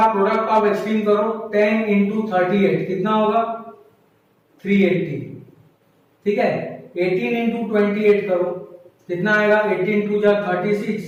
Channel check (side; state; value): both; identical; correlation 1.00